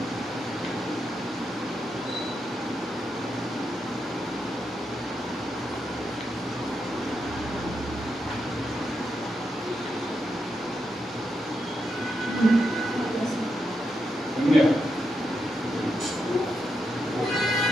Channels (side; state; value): both; normal; correlation 0.84